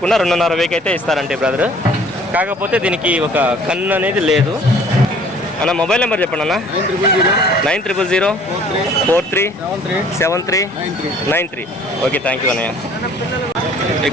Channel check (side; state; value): both; normal; correlation 0.54